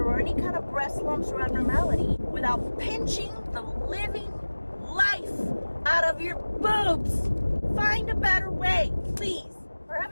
or any kind of breast lumps or abnormality without pinching the living life out of your boobs. Find a better way, please. For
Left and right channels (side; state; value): both; inverted; correlation -1.00